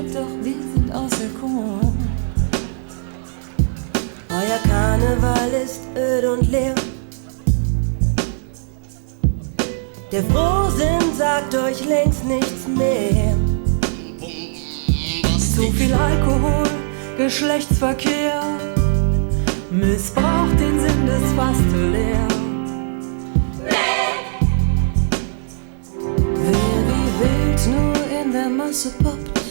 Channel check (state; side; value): silent; left; digital silence